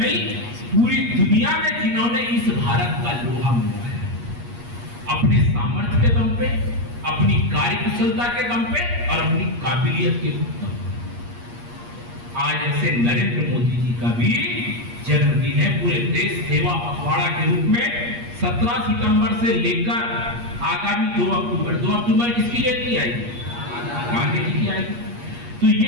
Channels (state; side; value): late; left; 8.4 ms